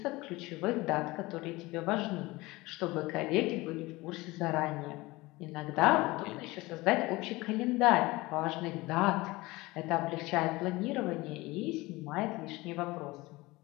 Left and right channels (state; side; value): quieter; right; 21.2 dB